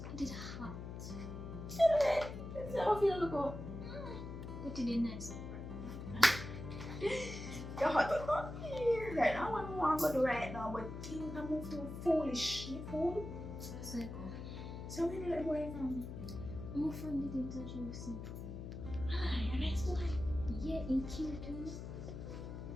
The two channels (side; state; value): left; noise; hum, 8 dB below the sound